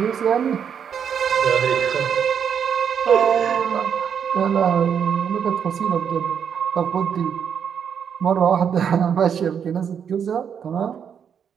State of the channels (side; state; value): left; quieter; 7.7 dB